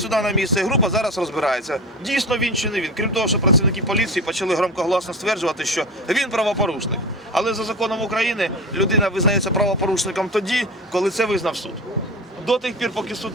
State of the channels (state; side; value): normal; both; correlation 0.28